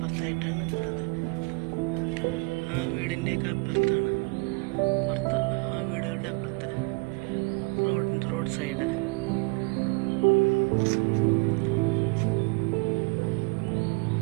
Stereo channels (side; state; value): left; quieter; 29.4 dB